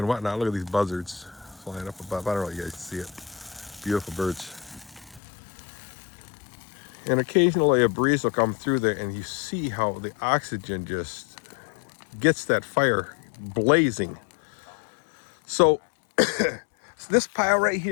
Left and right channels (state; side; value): drops out; right; at 5.2 s